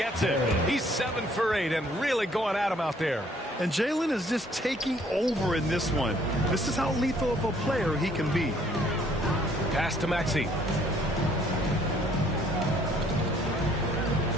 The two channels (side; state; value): both; normal; correlation 0.62